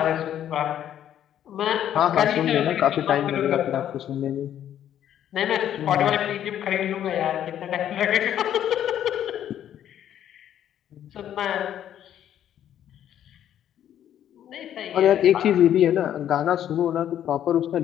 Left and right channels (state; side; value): quieter; right; 10.6 dB